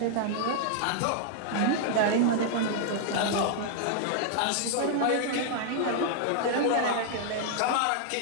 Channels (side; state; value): both; different; correlation 0.00